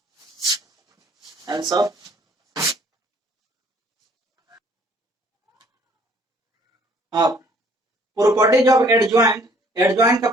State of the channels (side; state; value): both; normal; correlation 0.59